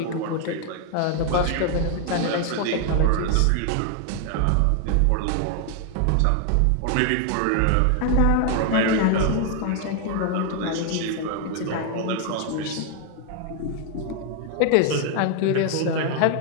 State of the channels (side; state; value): both; different; correlation 0.00